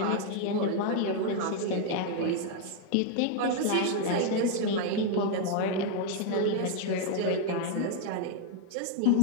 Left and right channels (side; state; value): both; different; correlation 0.00